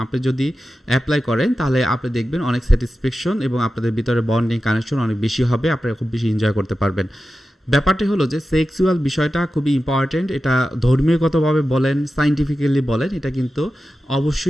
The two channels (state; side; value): normal; both; correlation 0.93